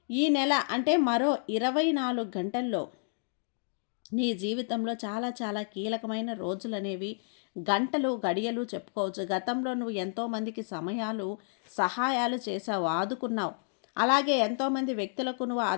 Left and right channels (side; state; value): right; silent; digital silence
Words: ఈ నెల అంటే మరో 24 గంటల్లో నీ జీవితంలో చాలా చాలా కీలకమైన రోజులు అనేవి, గంటలు, గడియలు చెప్పుకోవచ్చు. గతంలో నువ్వు ఎంతోమందికి సహాయాలు చేశావు, ఆదుకున్నావు. అలాగే ఎంతోమంది వ్యక్తులకు నువ్వు